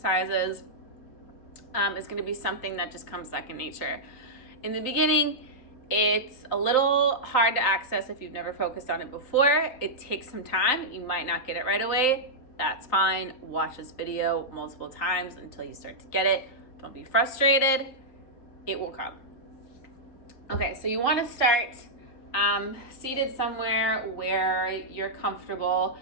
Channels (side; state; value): right; late; 3.9 ms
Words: is going to be something that just comes second nature. In the beginning, it's a little hard to access if you've never focused on it before. It takes some time. You might not get it right away. That's fine. Watch this video multiple times until you start to get it. Don't be frustrated. It will come. Okay, so you want to start seated somewhere where you're comfortable.